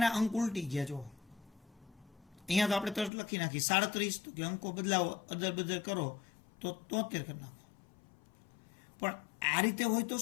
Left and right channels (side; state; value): right; drops out; at 3.1 s